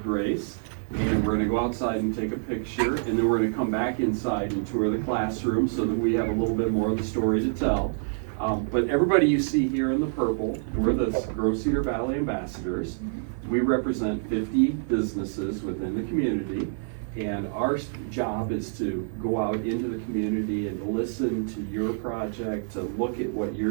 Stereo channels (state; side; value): silent; left; 60 dB below the other